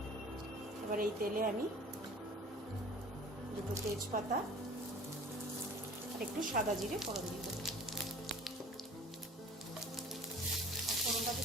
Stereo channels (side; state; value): both; normal; correlation 0.46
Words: এবার এই তেলে আমি দুটো তেজপাতা আর একটু সাদা জিরে ফোড়ন দিয়ে দেবো। ফোড়নটা